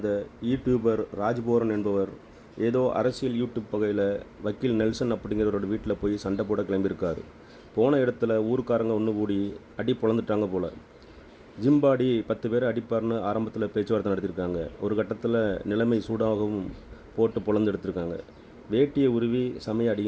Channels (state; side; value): identical; both; correlation 1.00